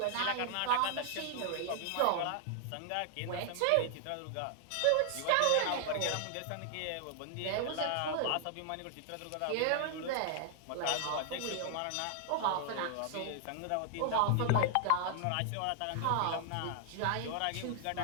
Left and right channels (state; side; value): different; both; correlation 0.00